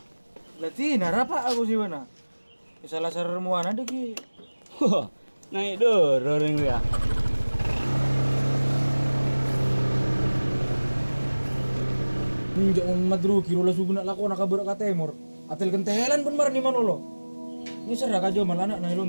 Lati narapa aku sih mana? Salah sarmuan ada ki. Huh, naik dor orang dia. Jangan madru kiro lah suguna lako nak kabur ka temor. Atel kentelan pun mar ni manolo. Ini serah kajo malah anak nai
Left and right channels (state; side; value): inverted; both; correlation -1.00